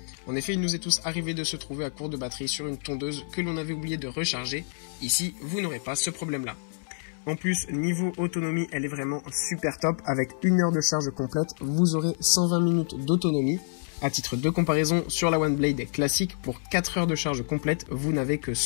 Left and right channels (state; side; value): silent; right; 59 dB below the other